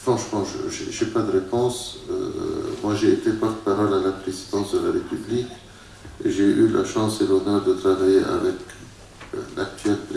je n'ai pas de réponse. Moi, j'ai été porte-parole à la présidence de la République. J'ai eu la chance et l'honneur de travailler avec l'actuel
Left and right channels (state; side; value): identical; both; correlation 1.00